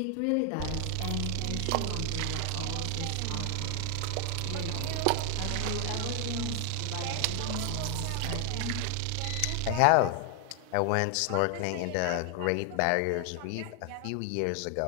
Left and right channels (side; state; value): both; different; correlation 0.00